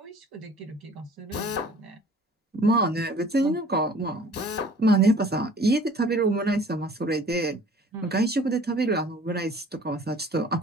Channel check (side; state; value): both; normal; correlation 0.50